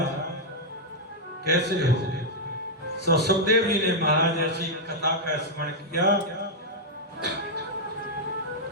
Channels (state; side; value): normal; both; correlation -0.04